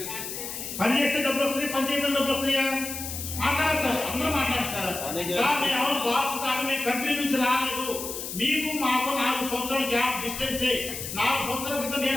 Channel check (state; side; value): noise; left; hiss, 7 dB below the sound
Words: పని చేస్తే డబ్బులు వస్తాయి, పని చేయడం డబ్బులు వస్తాయా? మాట్లాడాలి సార్, అందరూ మాట్లాడాలి సార్. సార్ మేము ఎవరు బాస్ కాదు, మేము కంపెనీ నుంచి రాలేదు, మీకు మాకు 4 సంవత్సరాల గ్యాప్ డిస్టెన్సే. 4 సంవత్సరాల క్రితం